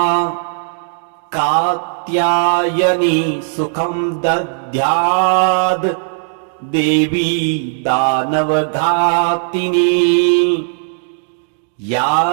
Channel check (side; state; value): left; silent; digital silence